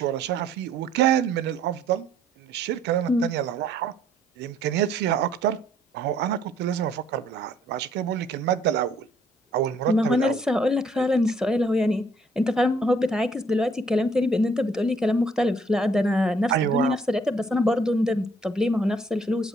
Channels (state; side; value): normal; both; correlation 0.63